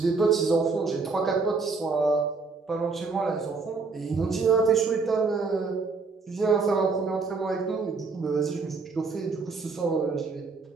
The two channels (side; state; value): left; quieter; 4.3 dB